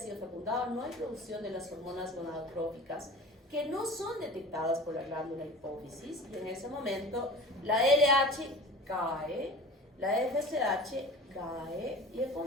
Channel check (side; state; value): both; normal; correlation 0.38